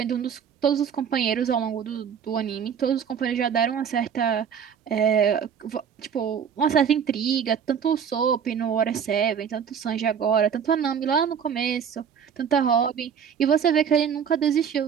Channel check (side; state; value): left; quieter; 7.6 dB